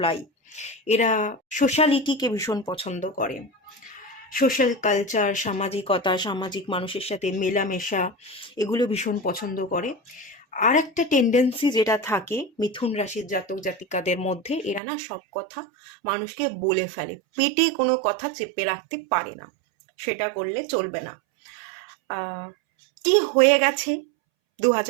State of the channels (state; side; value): drops out; left; at 14.8 s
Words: এরা সোশ্যালিটিকে ভীষণ পছন্দ করে, সোশ্যাল কালচার, সামাজিকতা, সামাজিক মানুষের সাথে মেলামেশা, এগুলো ভীষণ পছন্দ করে। আর একটা টেন্ডেন্সি যেটা থাকে মিথুন রাশির জাতক জাতিকাদের মধ্যে, এরা না সব কথা মানুষকে বলে ফেলে, পেটে কোনো কথা চেপে রাখতে পারে না, সেটা করলে চলবে না। কি হয়ে গেছে